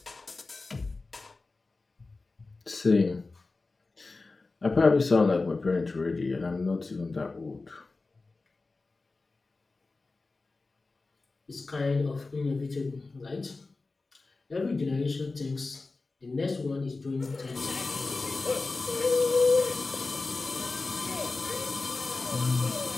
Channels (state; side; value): quieter; right; 3.6 dB